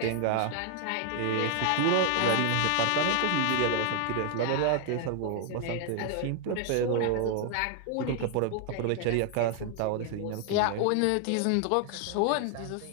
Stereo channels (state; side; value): different; both; correlation 0.00